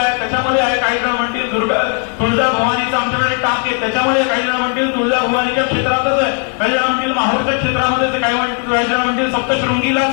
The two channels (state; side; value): quieter; right; 36.6 dB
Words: त्याच्यामध्ये आहे. काही जण म्हणतील तुळजा भवानीचा आमच्याकडे टाक आहे त्याच्यामध्ये. काही जण म्हणतील तुळजा भवानीच्या क्षेत्रातच आहे. काही जण म्हणतील माहूरच्या क्षेत्रामध्ये. काही जण म्हणतील सप्तशृंगीलाच